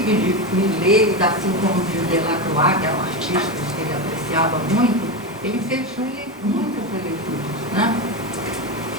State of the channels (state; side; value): normal; both; correlation 0.16